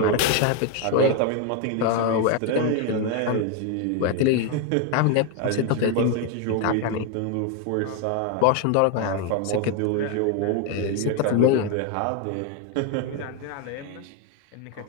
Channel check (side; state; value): both; different; correlation 0.01